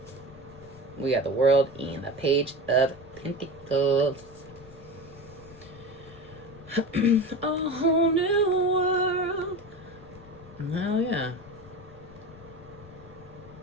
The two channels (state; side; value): noise; left; rumble, 21 dB below the sound